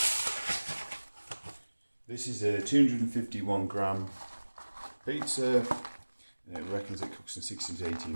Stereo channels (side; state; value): both; inverted; correlation -1.00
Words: This is a 251 gram pizza. It reckons it cooks in 16 to